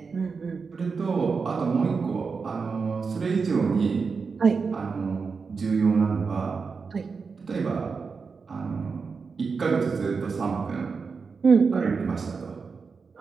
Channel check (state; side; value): quieter; left; 5.1 dB